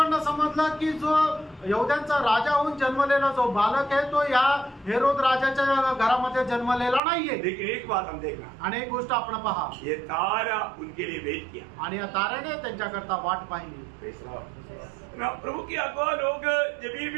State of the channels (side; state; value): left; drops out; at 7.0 s